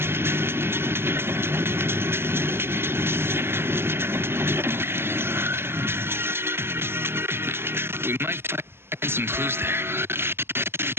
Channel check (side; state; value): left; late; 0.12 ms